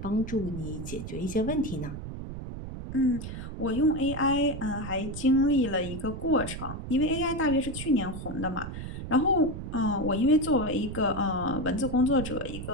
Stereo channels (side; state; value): right; noise; rumble, 8 dB below the sound